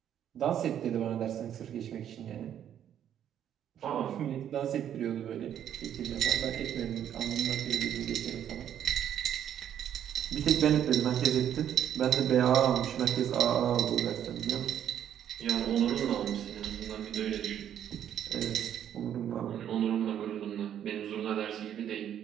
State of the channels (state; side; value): quieter; left; 10.0 dB